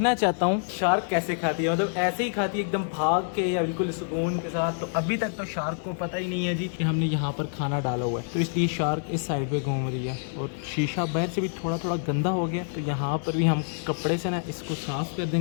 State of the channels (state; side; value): silent; right; digital silence